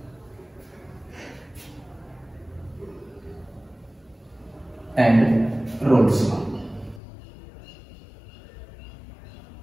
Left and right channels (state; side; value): drops out; right; at 7.0 s